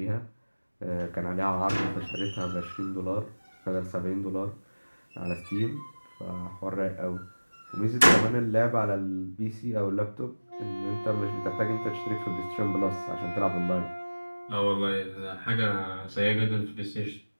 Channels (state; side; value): inverted; both; correlation -1.00